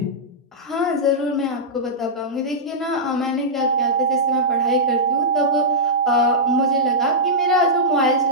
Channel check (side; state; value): both; normal; correlation -0.11